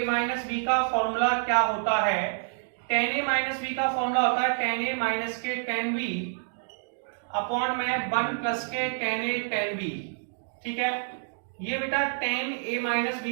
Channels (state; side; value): silent; left; digital silence